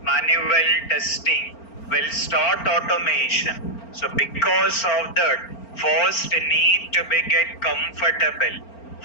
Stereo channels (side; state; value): right; late; 4.4 ms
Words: manual testing will start automation. So because of that, first need to be get comfortable.